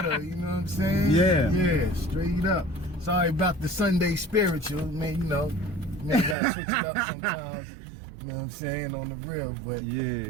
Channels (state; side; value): drops out; left; at 6.4 s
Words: You know what I'm saying? Yeah, straight up. Sorry about the Sunday spiritual, man. You know, gotta switch it up sometimes. You know what I'm saying, on the real, but yeah,